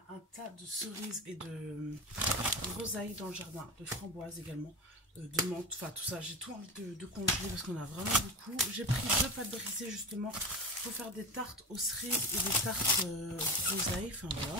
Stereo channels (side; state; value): both; normal; correlation 0.24